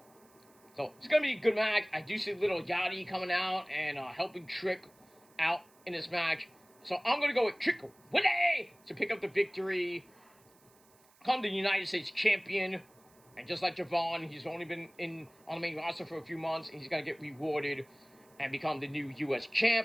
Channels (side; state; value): right; noise; hiss, 30 dB below the sound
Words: So, it's going to be a good match. I do see little Yachty coming out and helping Trick out in this match. So, I'm going to go with Trick Willie to pick up the victory. Become the United States champion. And just like Javon, he's only been on the main roster for a few months. And he's going to get rewarded and become the new U.S.